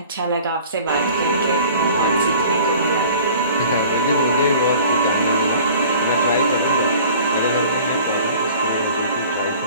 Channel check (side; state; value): both; inverted; correlation -0.47